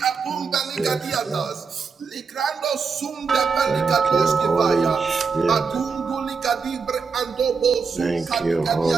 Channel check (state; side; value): quieter; left; 5.2 dB